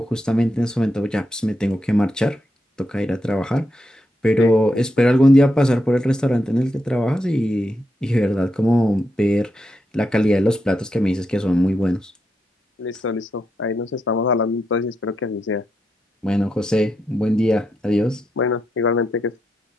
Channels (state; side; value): normal; both; correlation 0.84